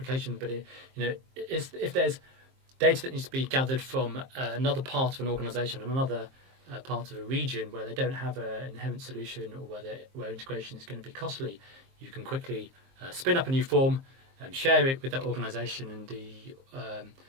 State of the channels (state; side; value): late; left; 23 ms